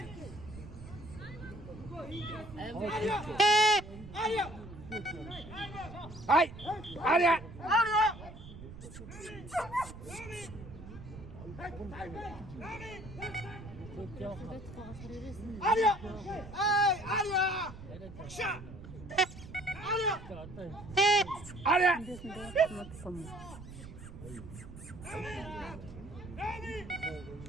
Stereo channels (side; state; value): right; noise; rumble, 14 dB below the sound